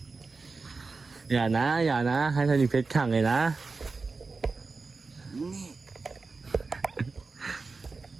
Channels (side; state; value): left; quieter; 4.1 dB